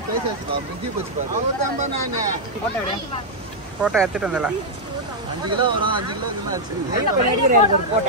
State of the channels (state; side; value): normal; both; correlation -0.03